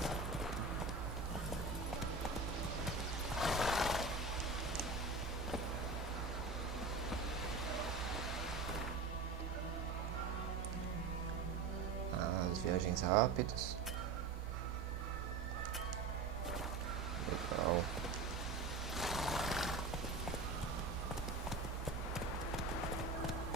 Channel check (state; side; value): quieter; left; 4.0 dB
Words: As viagens rápidas. Legal.